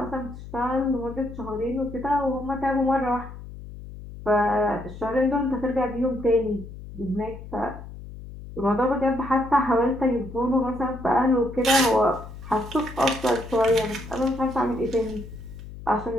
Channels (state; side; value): noise; left; hum, 13 dB below the sound